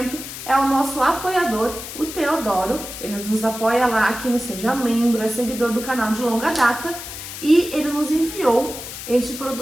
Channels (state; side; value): noise; left; hiss, 10 dB below the sound